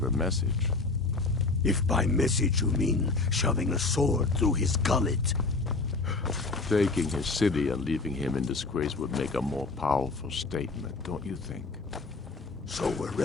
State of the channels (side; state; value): right; quieter; 3.7 dB